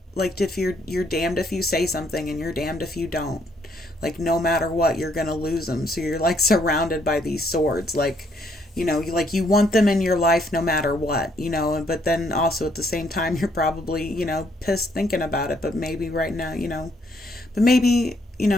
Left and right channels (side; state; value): both; normal; correlation 0.70